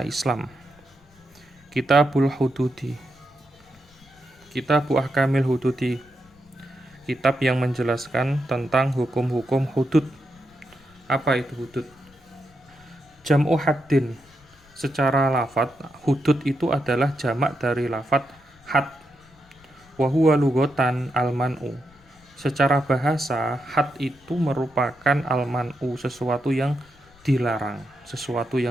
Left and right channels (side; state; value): left; noise; rumble, 29 dB below the sound